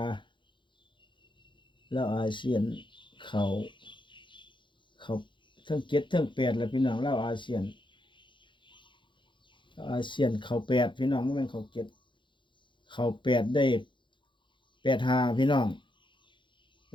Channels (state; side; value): late; right; 0.23 ms